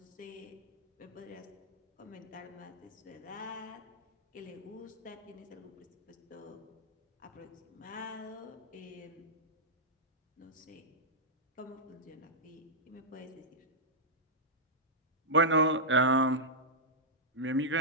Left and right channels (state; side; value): normal; both; correlation -0.10